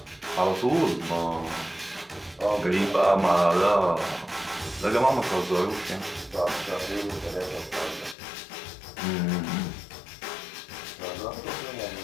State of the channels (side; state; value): right; drops out; at 8.2 s